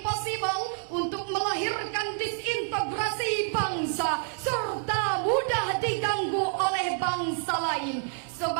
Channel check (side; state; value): left; silent; 59 dB below the other